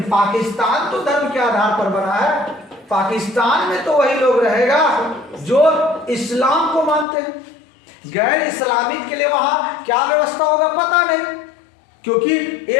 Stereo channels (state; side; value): drops out; right; at 7.1 s